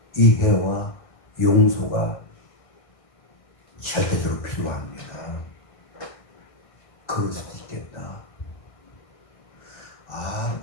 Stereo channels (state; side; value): late; right; 1.5 ms